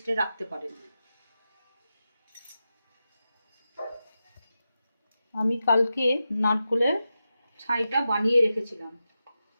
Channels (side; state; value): both; inverted; correlation -0.91